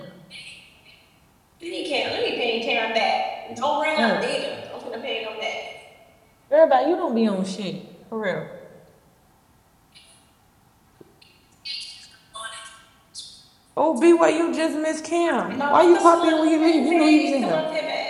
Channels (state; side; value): identical; both; correlation 1.00